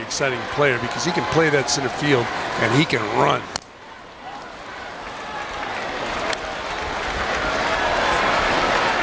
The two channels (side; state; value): both; identical; correlation 1.00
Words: player because he can play that center field and he can run.